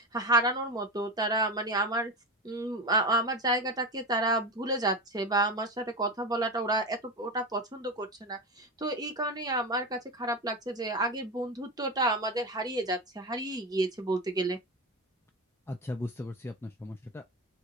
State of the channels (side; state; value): both; normal; correlation 0.20